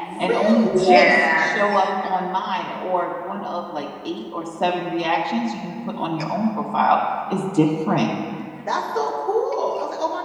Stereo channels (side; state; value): both; identical; correlation 1.00